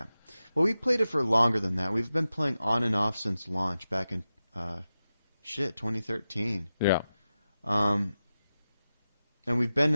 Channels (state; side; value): inverted; both; correlation -0.93